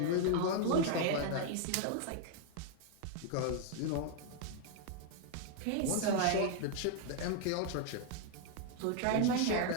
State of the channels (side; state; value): both; different; correlation 0.00